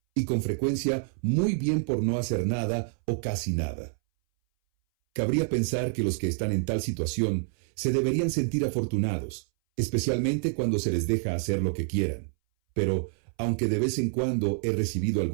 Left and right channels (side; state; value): left; silent; 60 dB below the other